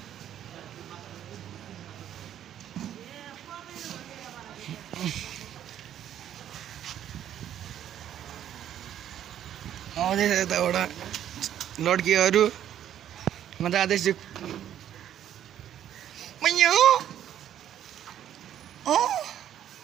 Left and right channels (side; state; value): left; quieter; 10.7 dB